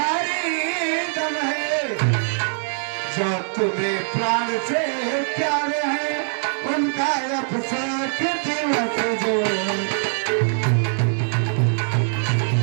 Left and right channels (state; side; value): silent; left; 64 dB below the other